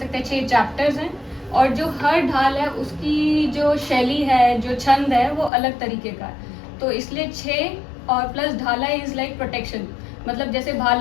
हैं 6 चैप्टर्स हैं। और जो हर ढाल है उसकी जो शैली है, जो छंद है, वो अलग तरीके का है। तो इसलिए 6 और प्लस ढाला इज लाइक प्रोटेक्शन। मतलब जैसे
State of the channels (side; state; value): right; drops out; at 5.5 s